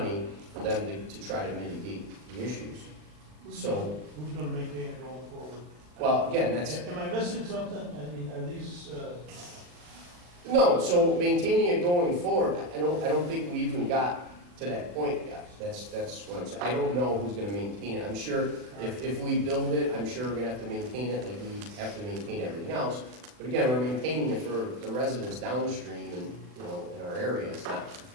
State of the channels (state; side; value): late; left; 39 ms